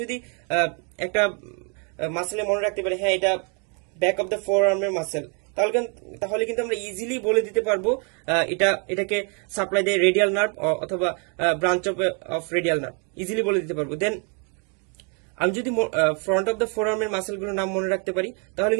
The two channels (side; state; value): left; quieter; 37.2 dB